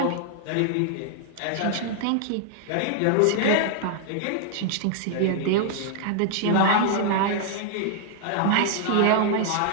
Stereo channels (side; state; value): both; different; correlation 0.00